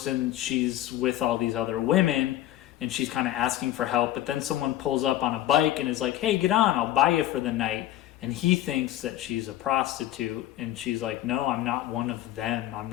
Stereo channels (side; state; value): right; quieter; 13.8 dB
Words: and she's with all these other women and she's kind of asking for help. But then someone pulls up on a bike and is like, hey, get on, I'll buy you for the night. And he thinks that she's a prostitute. And she's like, no, I'm not one of them. I'm